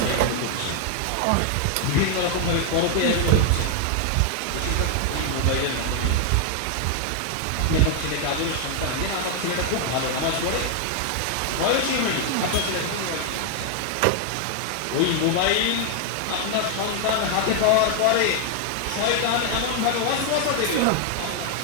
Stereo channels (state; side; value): different; both; correlation 0.00